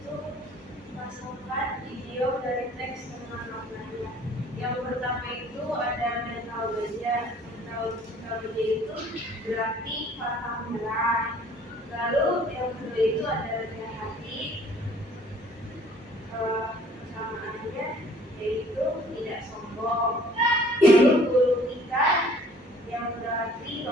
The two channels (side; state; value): both; normal; correlation 0.55